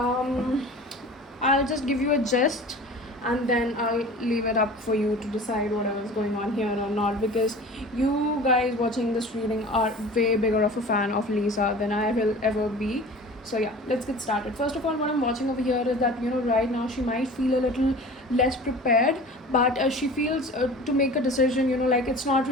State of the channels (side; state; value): both; normal; correlation 0.40